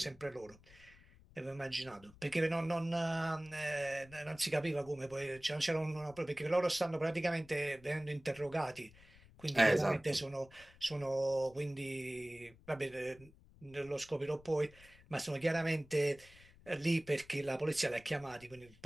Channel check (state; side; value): noise; left; rumble, 24 dB below the sound